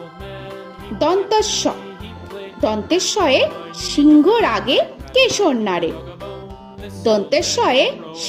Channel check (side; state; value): both; identical; correlation 1.00